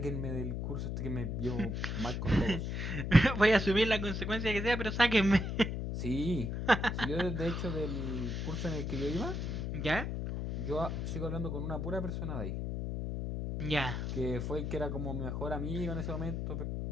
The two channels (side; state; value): left; noise; hum, 2 dB below the sound